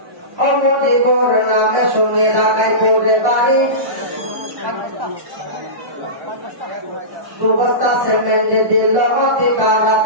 মুজিবুর নামে শুনে ঢাকায় পড়ে বাড়ি, 2 বস্তা সিমেন্ট দিল অতি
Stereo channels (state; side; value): late; left; 1.5 ms